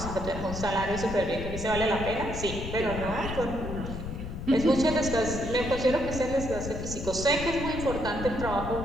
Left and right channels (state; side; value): noise; left; rumble, 7 dB below the sound